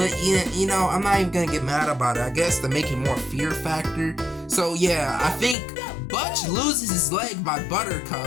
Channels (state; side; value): drops out; right; at 5.6 s